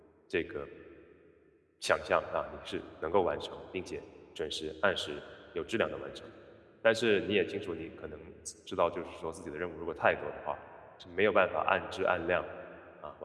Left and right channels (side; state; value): both; identical; correlation 1.00